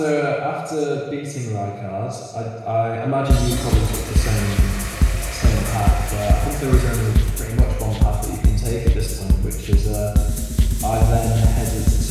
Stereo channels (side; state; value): both; identical; correlation 1.00